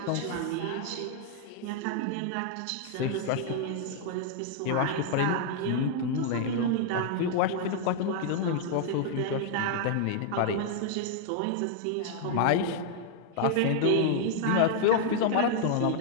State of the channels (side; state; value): both; different; correlation -0.01